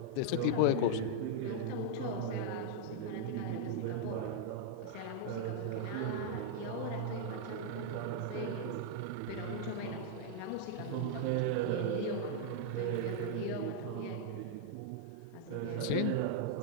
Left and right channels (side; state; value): both; different; correlation -0.01